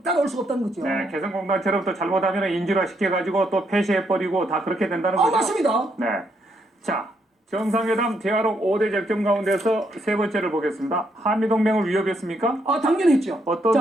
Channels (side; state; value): both; normal; correlation 0.76